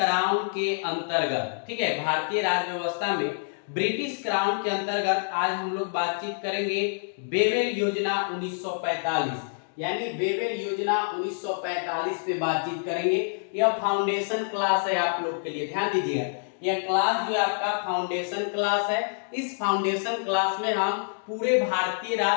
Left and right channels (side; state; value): right; silent; digital silence